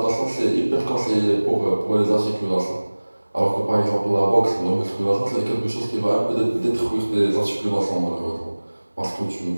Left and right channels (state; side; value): inverted; both; correlation -1.00